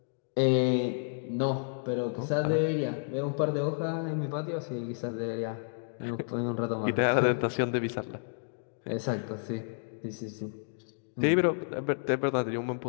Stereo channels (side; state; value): right; silent; digital silence